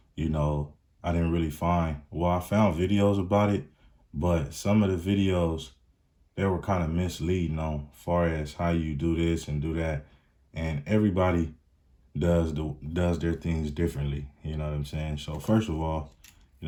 you know, I didn't really find, well, I found videos about it, but some of the videos, they were kind of misleading on far as how you do this and do that. And everybody does their things differently. You know what I'm saying? So first of all, you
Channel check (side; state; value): both; identical; correlation 1.00